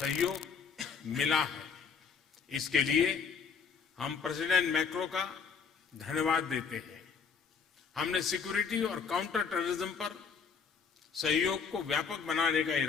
मिला है। इसके लिए हम प्रेसिडेंट मैक्रो का धन्यवाद देते हैं। हमने सिक्योरिटी और काउंटर टेररिज्म पर सहयोग को व्यापक बनाने का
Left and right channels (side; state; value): right; quieter; 6.0 dB